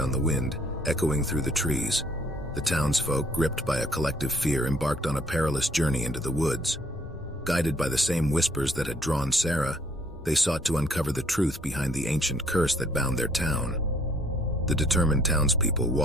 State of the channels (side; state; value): both; normal; correlation 0.63